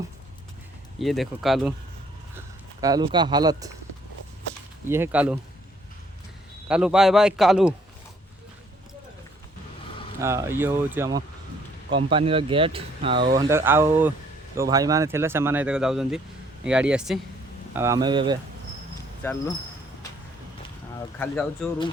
ये देखो कालू कालू का हालत ये है। कालू कालू बाय बाय कालू। ये हूँ कंपानी गेट आउ जो भाई मैंने थे से जाऊँ गाड़ी आसी आम चलू खाली जाऊँ रूम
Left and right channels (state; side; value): normal; both; correlation 0.64